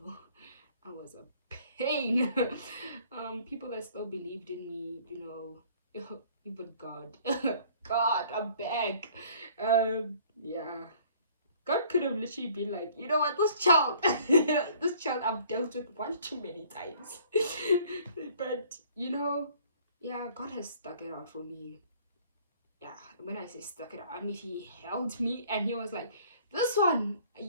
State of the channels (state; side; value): inverted; both; correlation -0.55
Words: I was a pain. People that still believed in me, you know. Even God. God, I'm back. Yeah, God could have literally been like, you know what, this child this child I've dealt with one too many times. But you know, yeah, God has stuck it out for me. Yeah, when I say stuck it out, I mean he held me and he was like, this one,